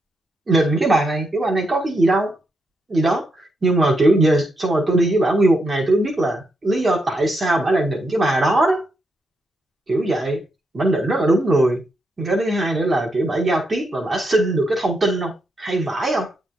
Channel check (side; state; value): both; normal; correlation 0.82